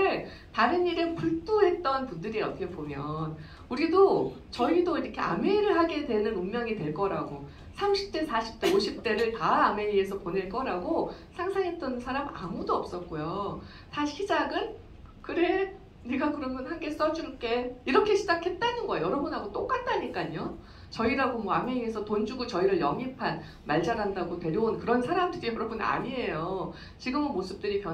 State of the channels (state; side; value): identical; both; correlation 1.00